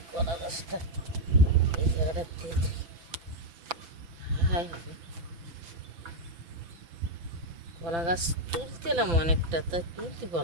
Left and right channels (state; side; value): late; left; 6.0 ms